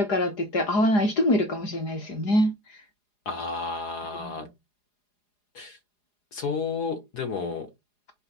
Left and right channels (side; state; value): right; late; 4.9 ms